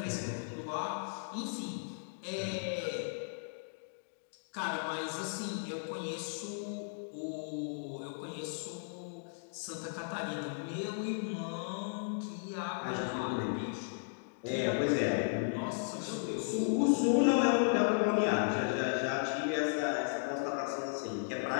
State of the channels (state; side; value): silent; right; digital silence